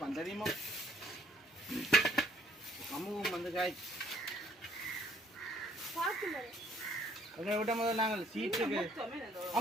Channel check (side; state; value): both; normal; correlation 0.62